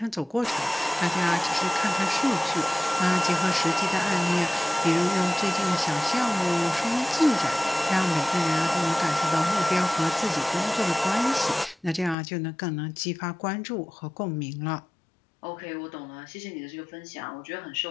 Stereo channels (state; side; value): drops out; right; at 12.2 s